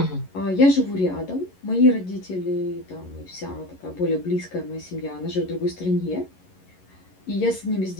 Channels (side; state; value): right; late; 11 ms